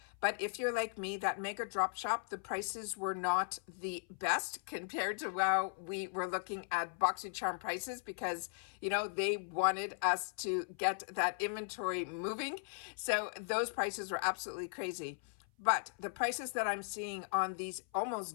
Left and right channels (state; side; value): silent; right; 53 dB below the other